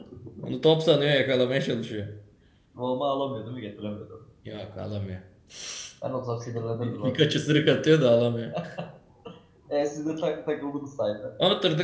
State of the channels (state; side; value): identical; both; correlation 1.00